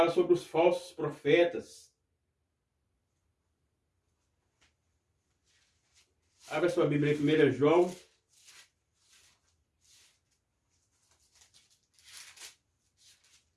sobre os falsos profetas. Abra sua Bíblia em 1 João.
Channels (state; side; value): identical; both; correlation 1.00